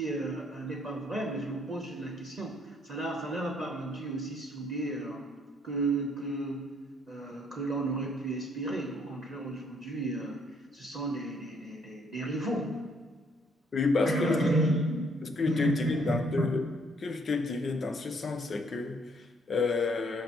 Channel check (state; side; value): normal; both; correlation 0.66